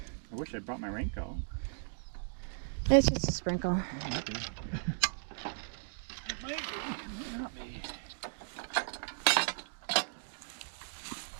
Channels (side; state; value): left; silent; digital silence